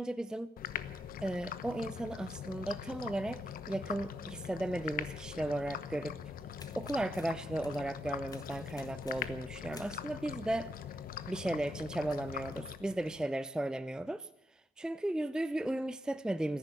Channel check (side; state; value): both; normal; correlation 0.84